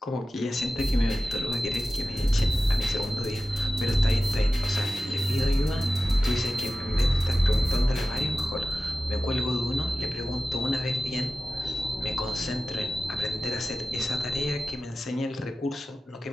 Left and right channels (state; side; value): normal; both; correlation 0.95